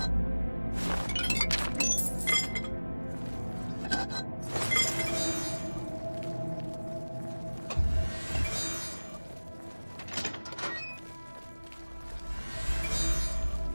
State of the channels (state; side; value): inverted; both; correlation -1.00